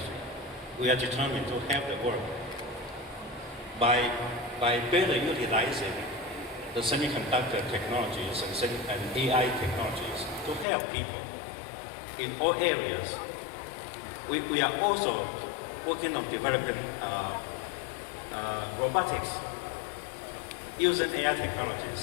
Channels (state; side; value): drops out; right; at 10.7 s